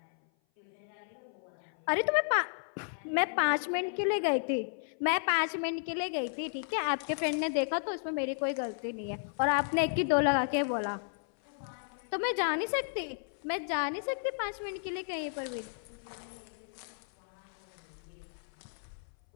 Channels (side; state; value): right; silent; 56 dB below the other